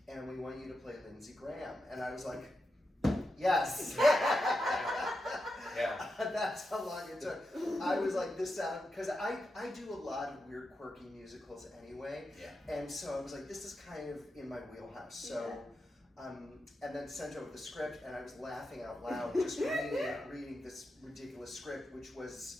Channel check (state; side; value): normal; both; correlation 0.88